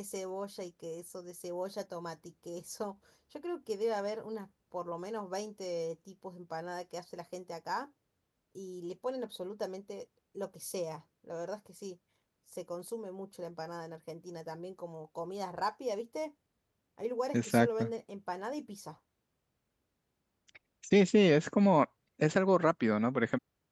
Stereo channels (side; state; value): both; identical; correlation 1.00